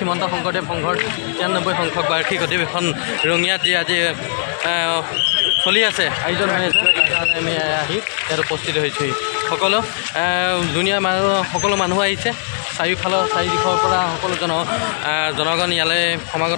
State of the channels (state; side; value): silent; right; digital silence